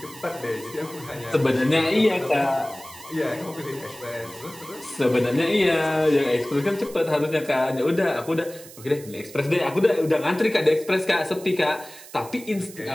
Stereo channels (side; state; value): right; noise; hiss, 18 dB below the sound